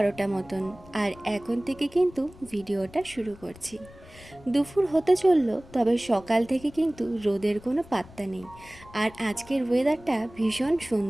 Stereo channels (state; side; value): noise; left; rumble, 21 dB below the sound